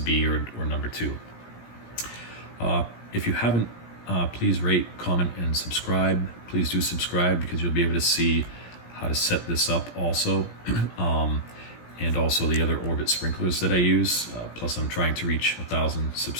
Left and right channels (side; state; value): right; late; 17 ms